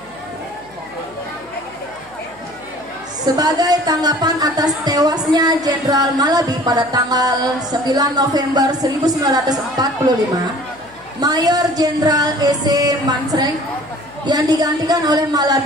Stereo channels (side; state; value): left; noise; hum, 27 dB below the sound